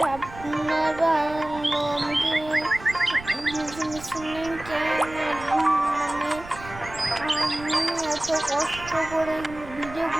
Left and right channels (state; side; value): noise; right; rumble, 16 dB below the sound